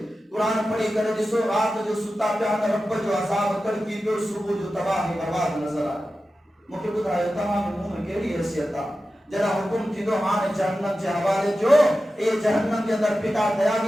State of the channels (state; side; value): normal; both; correlation 0.93